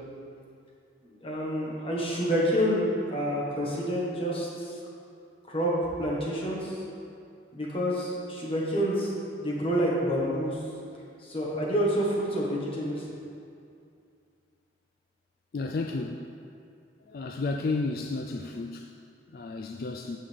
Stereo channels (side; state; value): both; normal; correlation 0.48